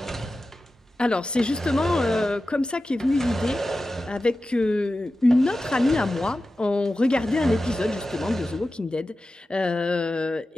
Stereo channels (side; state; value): both; normal; correlation 0.94